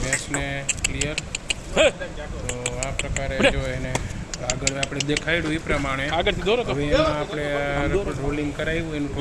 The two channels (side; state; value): both; identical; correlation 1.00